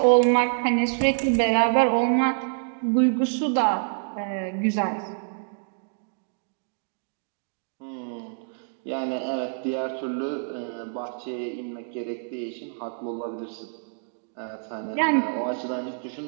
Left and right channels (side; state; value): left; silent; digital silence